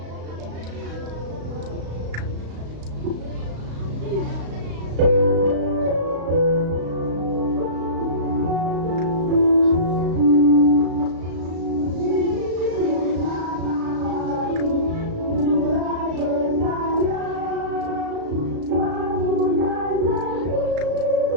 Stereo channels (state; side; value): late; left; 35 ms